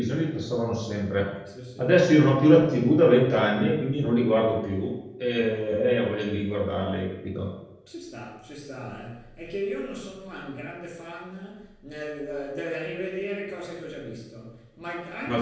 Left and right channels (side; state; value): both; identical; correlation 1.00